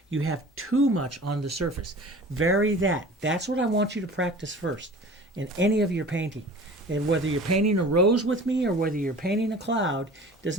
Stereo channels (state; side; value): normal; both; correlation 0.42